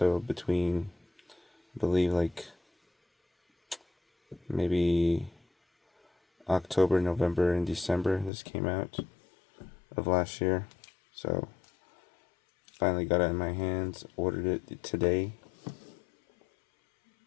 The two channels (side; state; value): right; drops out; at 8.3 s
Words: between, I believe, like maybe October, November, and December, this came out of last year. So finally got it in my hands, ordered it today.